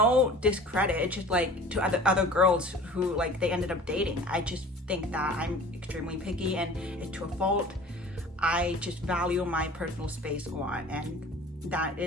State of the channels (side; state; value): both; normal; correlation 0.43